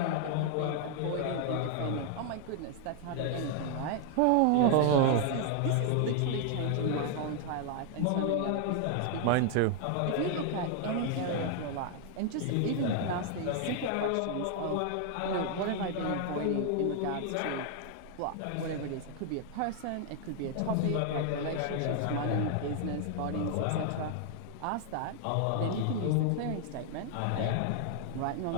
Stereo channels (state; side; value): different; both; correlation 0.00